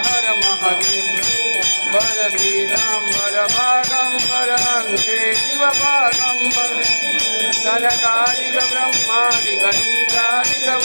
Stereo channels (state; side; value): inverted; both; correlation -1.00